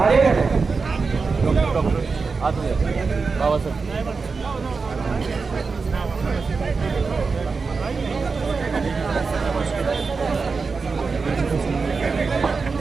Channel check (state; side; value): quieter; left; 4.6 dB